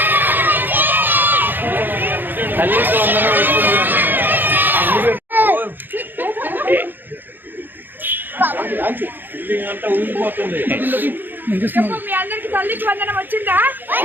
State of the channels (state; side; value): late; left; 0.092 ms